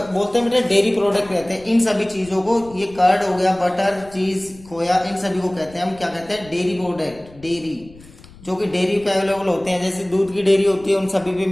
बोलते हैं बेटे, डेयरी प्रोडक्ट कहते हैं इन सभी चीजों को। ये कर्ड हो गया, बटर, चीज, खोया, इन सभी को कहते हैं हम क्या कहते हैं, डेयरी प्रोडक्ट, डेयरी, जो कि डेयरी पे अवेलेबल होते हैं, जैसे दूध की डेयरी होती है, उन सभी पे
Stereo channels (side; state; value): left; noise; rumble, 22 dB below the sound